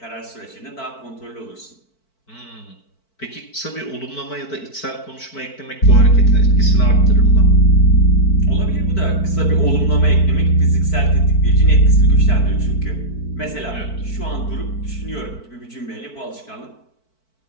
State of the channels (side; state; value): right; late; 4.5 ms